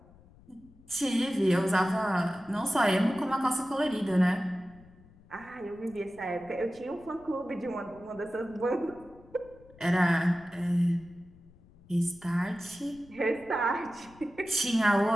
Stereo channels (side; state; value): left; noise; rumble, 25 dB below the sound